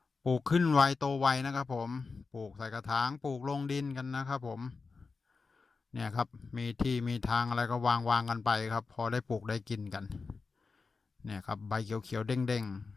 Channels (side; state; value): right; quieter; 4.4 dB